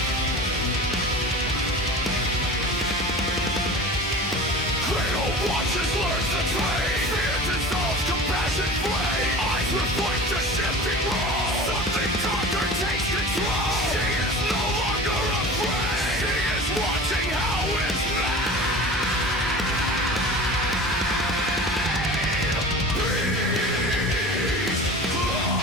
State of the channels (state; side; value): normal; both; correlation 0.36